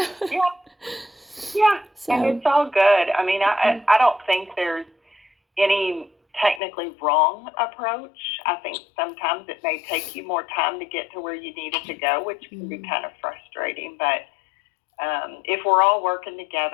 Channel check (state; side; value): drops out; right; at 6.6 s